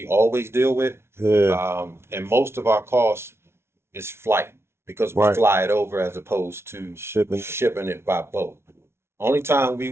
always deal with. Yeah, And most of our cost is flight because we right. fly it over as opposed to Shipping it. shipping it by boat. Only time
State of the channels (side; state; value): left; late; 0.12 ms